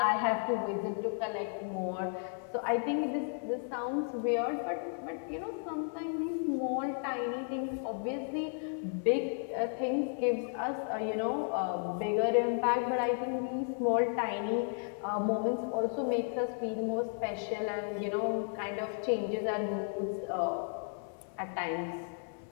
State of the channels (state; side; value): silent; right; 55 dB below the other